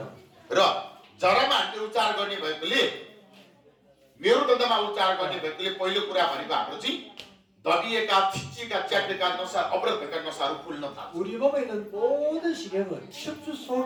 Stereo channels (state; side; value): identical; both; correlation 1.00